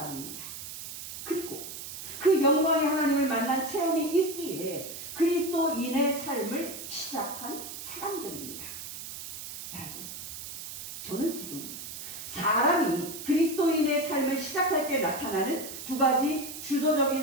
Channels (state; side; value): noise; right; hiss, 9 dB below the sound